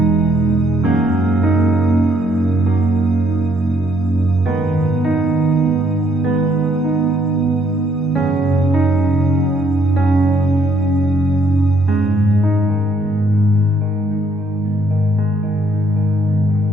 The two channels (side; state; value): both; normal; correlation 0.69